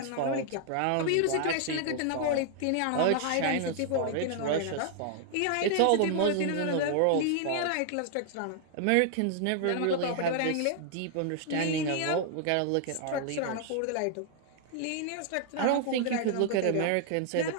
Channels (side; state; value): both; different; correlation 0.00